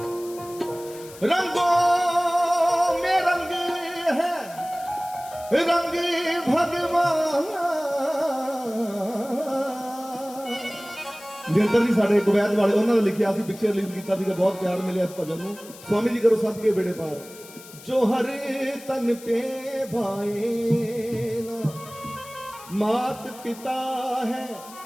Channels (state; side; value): noise; left; hiss, 18 dB below the sound